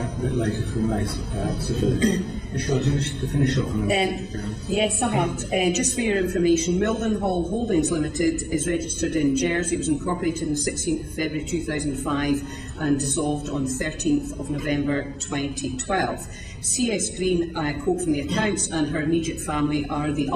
a bit later if we may. Michelle, do you wish to finish off? Yes, I have. Just for your information, Mildenhall Holdings Limited is registered in Jersey. It was incorporated on the 16th of February 2005 and dissolved on 13th of November 2012. CS Green, I quote from the accounts, and her immediate family are the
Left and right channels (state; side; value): identical; both; correlation 1.00